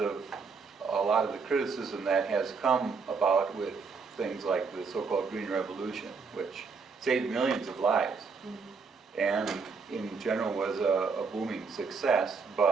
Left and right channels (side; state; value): left; quieter; 5.0 dB